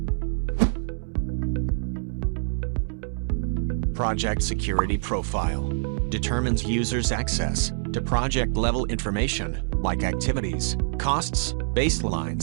Project security profile determines users' access to project-level information like activities, costs,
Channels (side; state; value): left; silent; 61 dB below the other